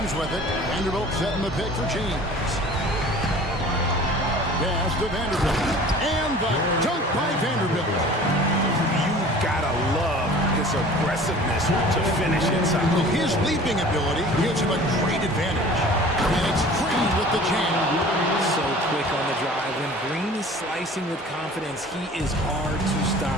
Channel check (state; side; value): normal; both; correlation 0.45